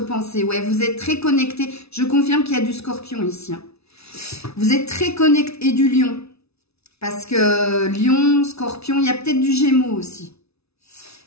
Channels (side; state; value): right; late; 0.79 ms